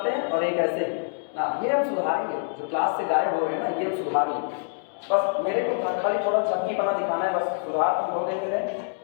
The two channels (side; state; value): right; silent; digital silence